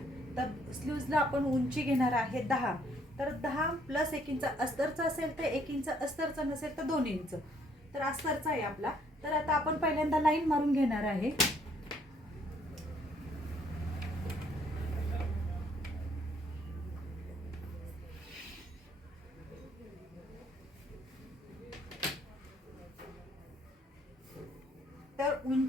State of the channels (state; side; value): normal; both; correlation 0.66